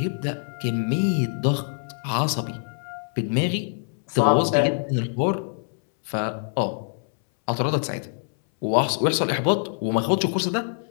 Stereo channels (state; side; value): silent; right; 62 dB below the other